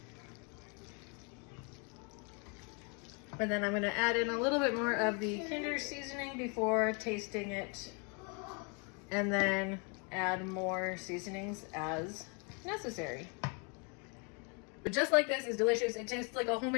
And then I'm going to add in a little bit more of the Kinder seasoning before tasting it. And then add more seasonings as necessary. But just like this is delicious. It tastes like a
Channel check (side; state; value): right; quieter; 35.2 dB